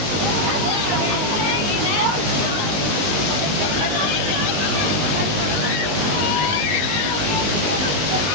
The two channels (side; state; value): left; late; 20 ms